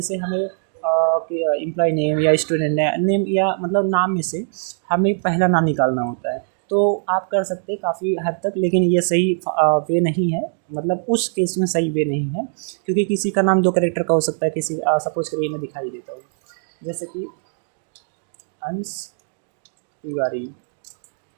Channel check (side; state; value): left; silent; digital silence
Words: हमें एम्प्लॉय नेम या स्टूडेंट नेम या मतलब नाम में से हमें पहला नाम निकालना होता है। तो आप कर सकते हैं काफ़ी हद तक, लेकिन ये सही वे नहीं है, मतलब उस केस में सही वे नहीं है, क्योंकि किसी का नाम 2 कैरेक्टर का हो सकता है। किसी सपोज करिए मैं दिखाई देता हूँ, जैसे कि अंश